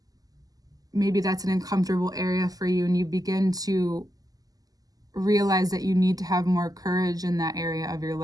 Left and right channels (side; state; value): left; late; 0.17 ms